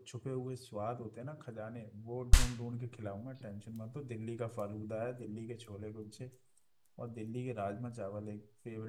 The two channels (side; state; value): both; identical; correlation 1.00